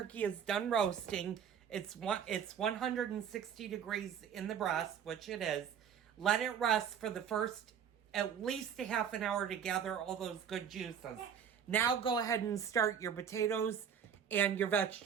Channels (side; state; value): left; quieter; 8.1 dB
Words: is done roasting. It's 160 degrees in the breast, which it is. Let it rest for the first at least a half an hour to gather all those good juices. Now go ahead and start your potatoes and your